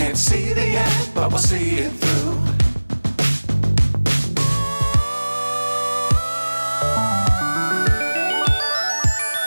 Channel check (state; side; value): inverted; both; correlation -1.00